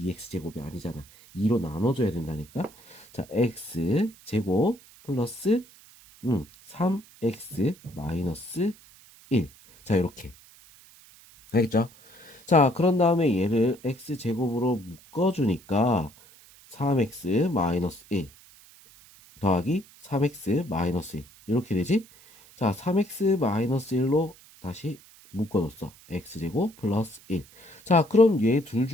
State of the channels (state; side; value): noise; right; hiss, 24 dB below the sound